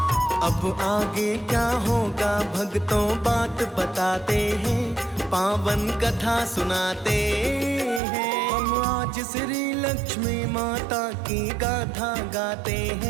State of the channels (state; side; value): drops out; left; at 8.0 s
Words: अब आगे क्या होगा भक्तों बात बताते हैं, पावन कथा सुनाते हैं। हम आज श्री लक्ष्मी माता की गाथा गाते